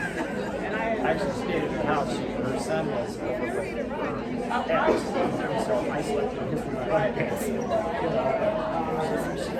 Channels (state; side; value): identical; both; correlation 1.00